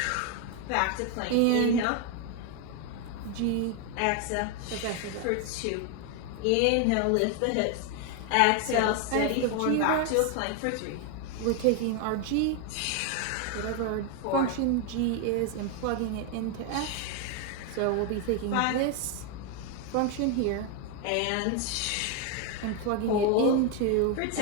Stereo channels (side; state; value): both; different; correlation 0.01